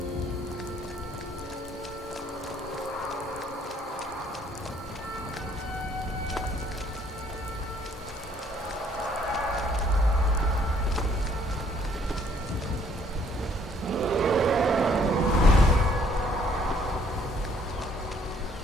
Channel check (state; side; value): normal; both; correlation 0.63